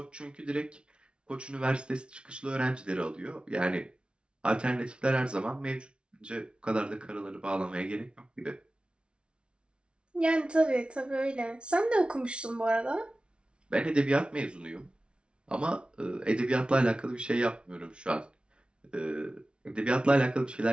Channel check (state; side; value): late; left; 0.058 ms